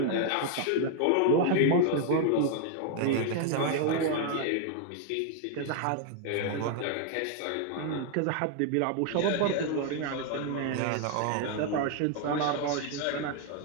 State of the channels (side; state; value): both; different; correlation 0.00